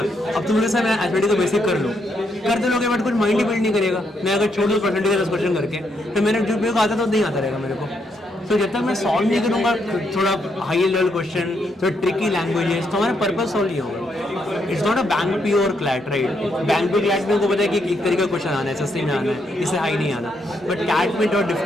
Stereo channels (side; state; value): both; normal; correlation 0.77